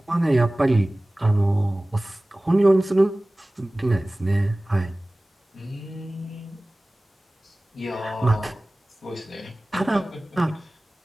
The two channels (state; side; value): normal; both; correlation 0.98